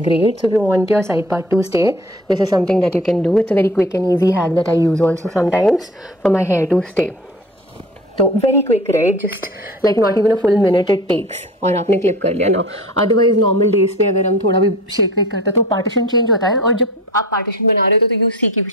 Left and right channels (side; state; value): both; normal; correlation 0.41